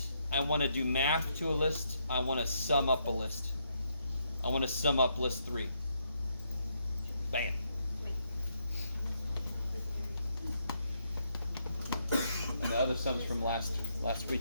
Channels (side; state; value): both; inverted; correlation -0.76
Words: I want to do math to a list. I want to sum up a list. I want to sum up list 3. Bam. And the other sums from last